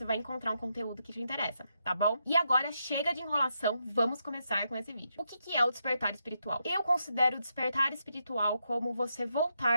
vai encontrar um conteúdo que te interessa, tá bom? E agora, chega de enrolação, vamos começar com esse vídeo. O que é o despertar espiritual? Eu considero o despertar espiritual como você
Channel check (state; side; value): inverted; both; correlation -0.82